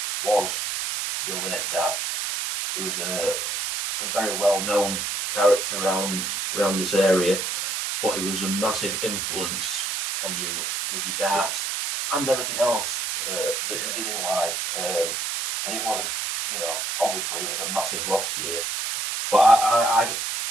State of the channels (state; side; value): noise; right; hiss, 2 dB below the sound